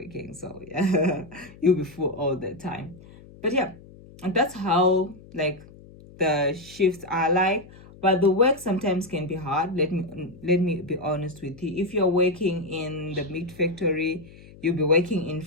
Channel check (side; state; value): left; noise; hum, 21 dB below the sound